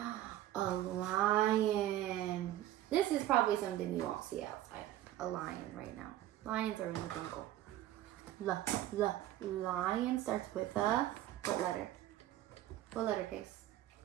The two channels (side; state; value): left; quieter; 13.6 dB